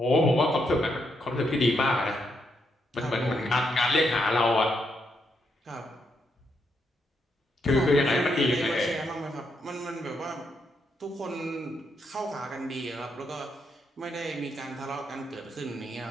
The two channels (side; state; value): both; normal; correlation 0.79